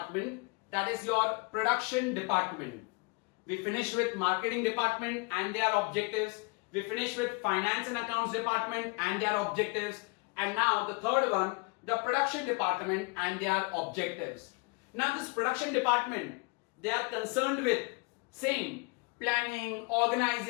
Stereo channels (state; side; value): quieter; right; 30.7 dB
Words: that is your production department. We finished with marketing department and their objectives. We finished with finance and accounts department and their objectives. And now the third one, the production department and their objectives. Now this production department, they are concerned with same planning,